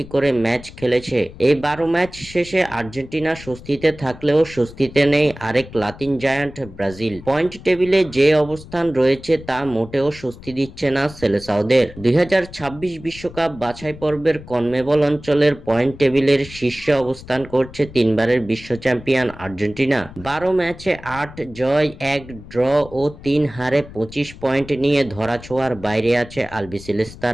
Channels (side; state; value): left; noise; rumble, 17 dB below the sound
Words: করে ম্যাচ খেলেছে। এই 12 ম্যাচ শেষে আর্জেন্টিনা স্বস্তিতে থাকলেও স্বস্তিতে নেই আরেক লাতিন জায়ান্ট ব্রাজিল। পয়েন্ট টেবিলে যে অবস্থান রয়েছে তা মোটেও স্বস্তি দিচ্ছে না সেলেসাওদের। 2026 বিশ্বকাপ বাছাই পর্বের কনমেবল অঞ্চলের পয়েন্ট টেবিলের শীর্ষে অবস্থান করছে তিনবারের বিশ্ব চ্যাম্পিয়ন আর্জেন্টিনা। 12 ম্যাচে 8 জয়, 1 ড্র ও 3 হারে 25 পয়েন্ট নিয়ে ধরাছোঁয়ার বাইরে আছে